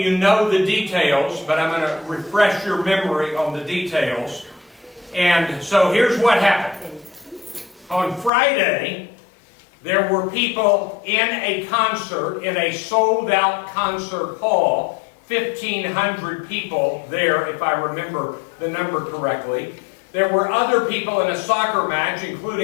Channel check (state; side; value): drops out; right; at 8.3 s